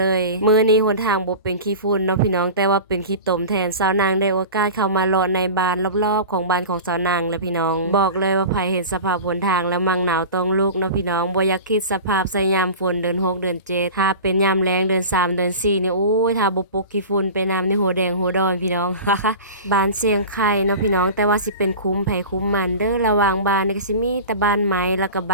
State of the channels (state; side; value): inverted; both; correlation -0.34